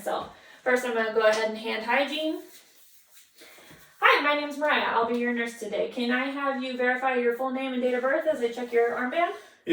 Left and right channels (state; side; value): identical; both; correlation 1.00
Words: First, I'm going to go ahead and hand hygiene. Hi, my name is Mariah. I'll be your nurse today. Can I have you verify your full name and date of birth as I check your armband?